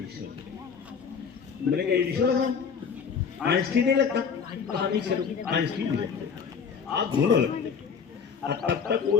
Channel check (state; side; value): quieter; right; 6.4 dB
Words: मैंने कहा एडिशनल आइंस्टीन नहीं लगता, कहानी चलो आइंस्टीन नहीं लगता, आप दोनों लगते। और तब तक